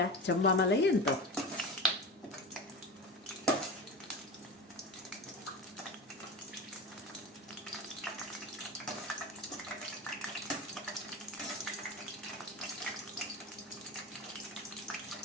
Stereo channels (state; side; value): normal; both; correlation 0.27